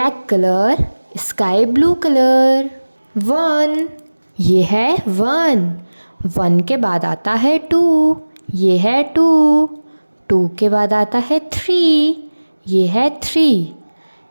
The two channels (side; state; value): both; inverted; correlation -1.00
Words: colour, sky blue colour. 1, ये है 1। 1 के बाद आता है 2, ये है 2। 2 के बाद आता है 3, ये है 3।